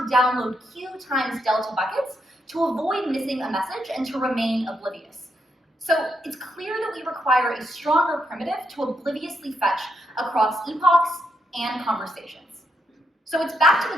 download Q times delta buckets to avoid missing a message and to remain oblivious. So it's clear that we require a stronger primitive to obliviously fetch across epochs and conversations. So it's back to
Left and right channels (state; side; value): normal; both; correlation 0.80